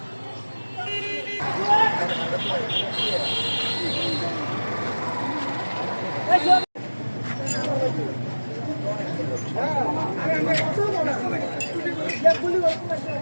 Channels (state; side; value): inverted; both; correlation -1.00